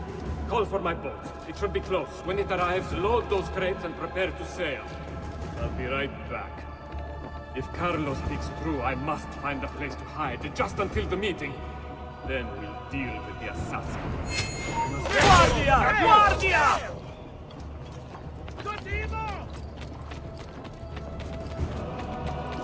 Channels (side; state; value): both; identical; correlation 1.00